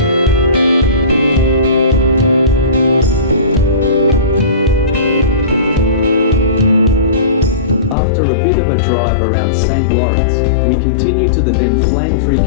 After a bit of a drive around St. Lawrence, we continue to the then flame-free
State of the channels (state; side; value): drops out; right; at 8.0 s